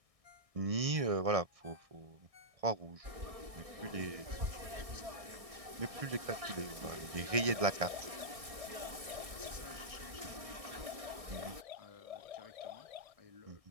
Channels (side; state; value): left; late; 1.6 ms